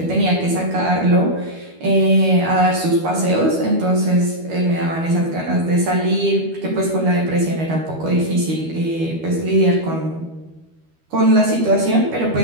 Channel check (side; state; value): left; late; 12 ms